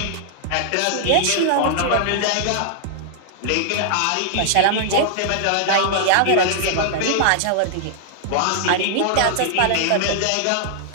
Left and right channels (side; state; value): both; different; correlation -0.01